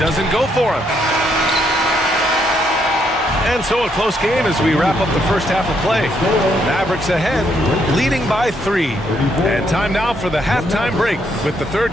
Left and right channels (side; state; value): both; normal; correlation 0.74